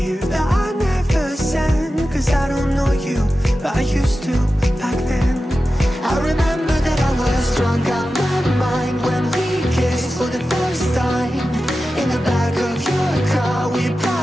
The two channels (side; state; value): both; normal; correlation 0.93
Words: that I never send, 'cause I don't know you, but I used to back then. I remember that I was drunk out my mind when we kissed for the first time. In the back of your car we